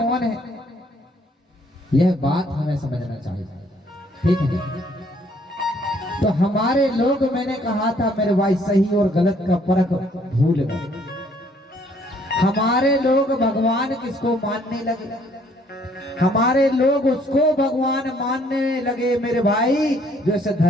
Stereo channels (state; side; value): normal; both; correlation 0.64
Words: है, यह बात हमें समझना चाहिए, ठीक है? तो हमारे लोग, मैंने कहा था मेरे भाई, सही और गलत का फर्क भूल गए। हमारे लोग भगवान किसको मानने लगे, हमारे लोग उसको भगवान मानने लगे मेरे भाई जो इस